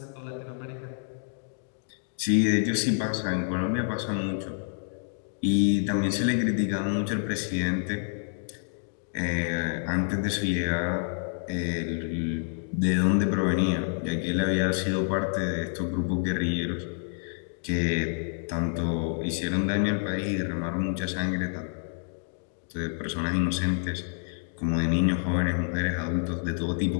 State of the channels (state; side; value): silent; right; digital silence